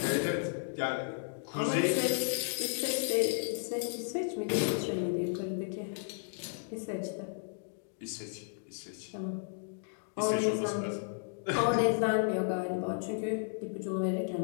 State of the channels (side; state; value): right; silent; digital silence